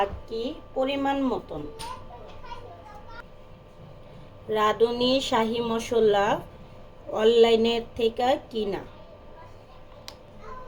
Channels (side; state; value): both; identical; correlation 1.00